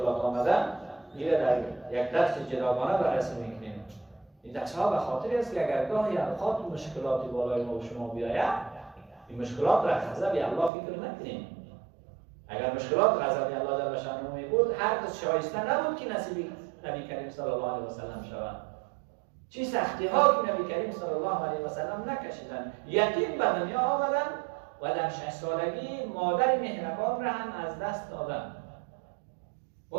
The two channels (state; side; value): drops out; left; at 10.7 s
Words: آمدن، دیگه در یک درس جداگانه بررسی میکنیم. این درس ها به خاطر است که اگر گاهی اوقات مشکلاتی بالای ما و شما بیاید، این مشکلات را خذب الله فکر نکنیم. اگر مشکلات غضب الله جل شأنه می بود، هرگز شایسته نبود که نصیب نبی کریم صلی الله علیه و سلم شود. چه سختی ها که نبی کریم صلی الله علیه و سلم نکشیدند. یتیم به دنیا آمدند و در 6 سالگی مادر مهربان را هم از دست دادند.